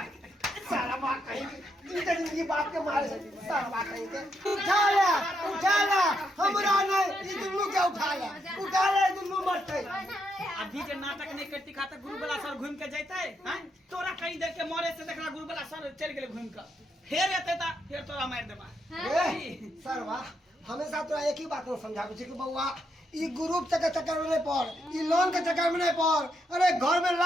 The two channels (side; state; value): both; normal; correlation 0.79